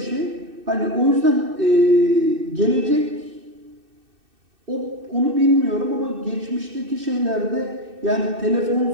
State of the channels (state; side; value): late; left; 2.6 ms